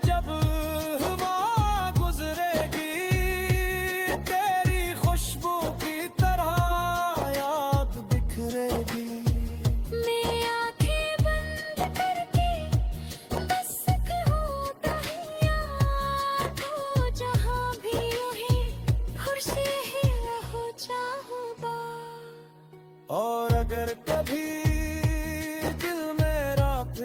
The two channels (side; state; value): both; identical; correlation 1.00